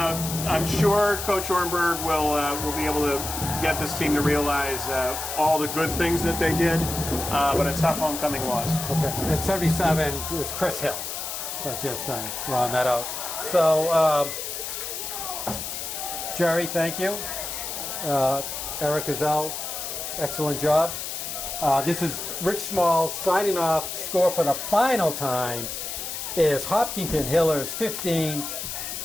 sure Coach Ornberg will be able to get this team to realize all the good things that they did, but a tough homecoming loss. Okay, at 77 is Chris Hill. So just round that out. So, Jerry, thank you. Eric Gazelle, excellent job. This is Rich Small signing off. Score for the final time is Hopkinton Hillers 15,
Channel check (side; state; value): left; noise; hiss, 6 dB below the sound